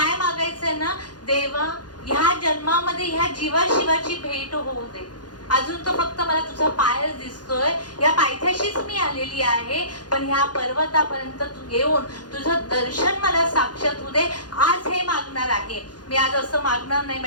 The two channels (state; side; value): late; right; 0.69 ms